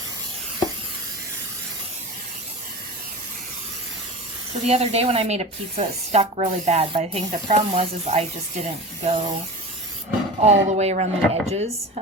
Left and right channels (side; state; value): both; normal; correlation 0.31